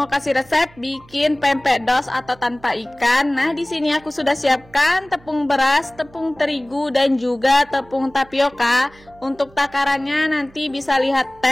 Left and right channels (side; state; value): right; noise; hum, 26 dB below the sound